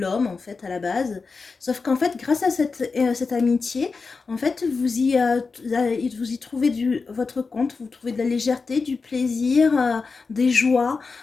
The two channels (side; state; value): right; quieter; 4.5 dB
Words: en fait à la base. Sauf qu'en fait, grâce à cette amitié, en fait, vous y trouvez votre compte, vous trouvez de la légèreté, du plaisir, des joies.